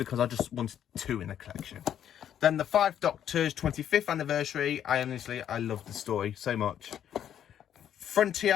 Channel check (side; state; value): right; quieter; 9.9 dB